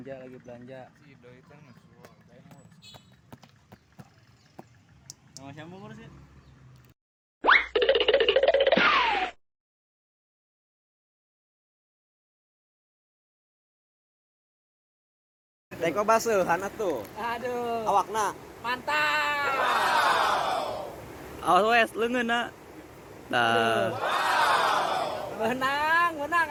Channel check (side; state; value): both; identical; correlation 1.00